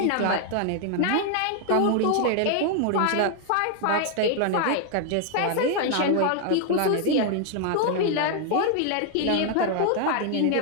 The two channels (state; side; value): different; both; correlation 0.00